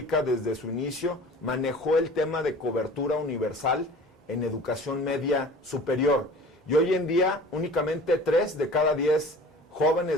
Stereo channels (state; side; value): normal; both; correlation 0.43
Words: desde su inicio, manejó el tema de cobertura universal en educación media superior. Y hoy en día, únicamente 3 de cada 10